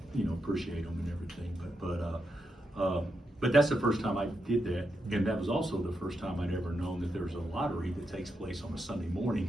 appreciate them and everything. But that's the first time I did that, and that was also the first time I'd ever known that there's a lottery that takes place on a Sunday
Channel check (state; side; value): normal; both; correlation 0.84